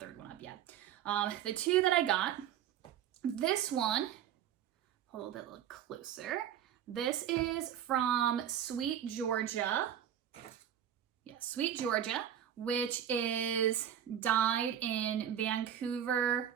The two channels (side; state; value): left; quieter; 9.9 dB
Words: one up yet. The 2 that I got, this one, a little bit closer. This is from Sweet Georgia. Yeah, Sweet Georgia, which is dyed in